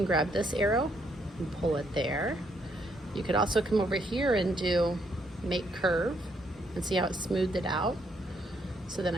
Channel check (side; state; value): both; normal; correlation 0.73